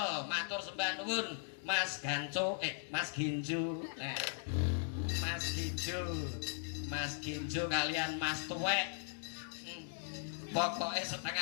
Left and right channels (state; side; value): silent; right; digital silence